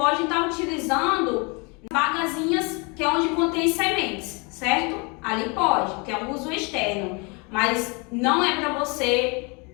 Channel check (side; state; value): right; quieter; 30.9 dB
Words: estar utilizando bagazinhas que é onde contém sementes, certo? Ali pode, que é um uso externo, mas não é para você